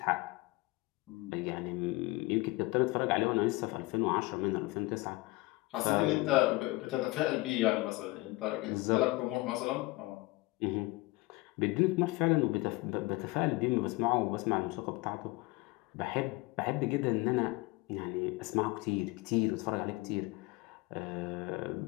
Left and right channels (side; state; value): right; quieter; 22.4 dB